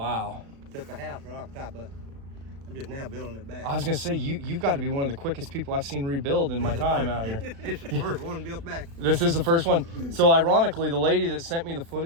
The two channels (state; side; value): late; left; 36 ms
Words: Took the house right off the top of it. I'm just now building it back. I was gonna say you've got to be one of the quickest people I've seen rebuild in my time out here. This is the first one built back. This is the first one. So ironically, the lady that sent me the